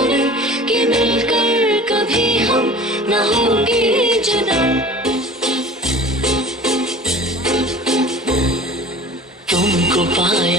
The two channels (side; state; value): both; normal; correlation 0.42